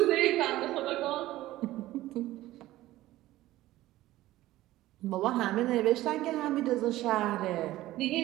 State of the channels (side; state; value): left; quieter; 16.0 dB